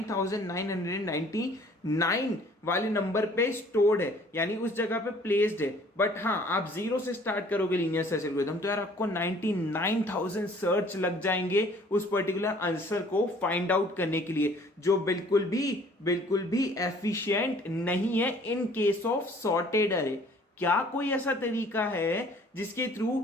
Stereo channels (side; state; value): both; normal; correlation 0.55